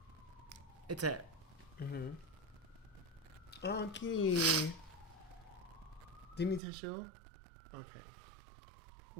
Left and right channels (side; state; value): left; drops out; at 6.6 s